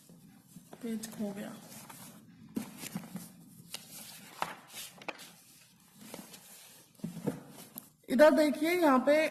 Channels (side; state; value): both; identical; correlation 1.00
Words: पेज खो गया। इधर देखिए, यहाँ पे